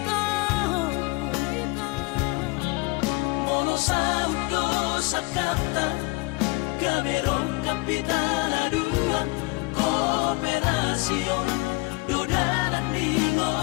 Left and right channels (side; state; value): right; quieter; 26.0 dB